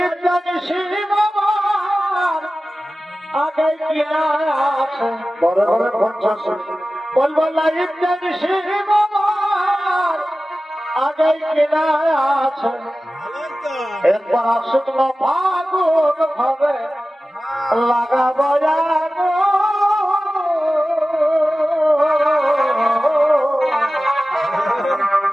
জানিস আমার আগে কি আছে বড় বড় 50 বলবো লাইফ জানিস আমার আগে কি আছে। একবার শুকনো ফাগুন ভাবে লাগাবো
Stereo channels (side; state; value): both; normal; correlation 0.96